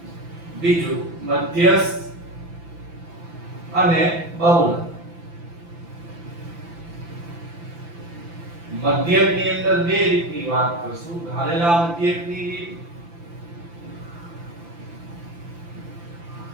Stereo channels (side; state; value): left; late; 5.9 ms